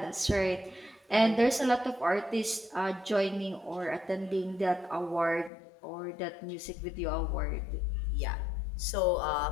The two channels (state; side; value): drops out; right; at 5.5 s